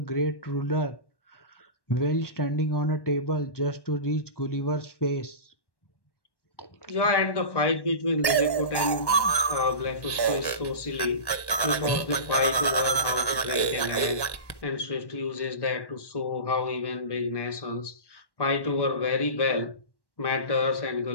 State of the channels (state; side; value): late; right; 1.1 ms